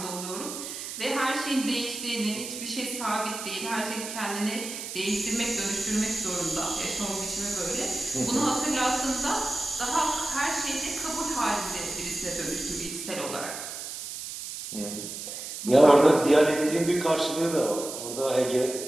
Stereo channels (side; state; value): right; noise; hiss, 8 dB below the sound